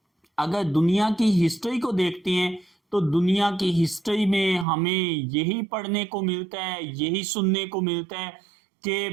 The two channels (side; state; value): left; drops out; at 4.7 s